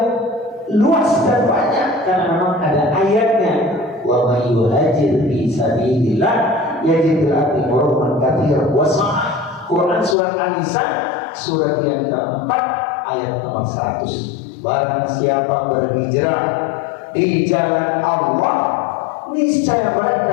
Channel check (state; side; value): drops out; right; at 10.2 s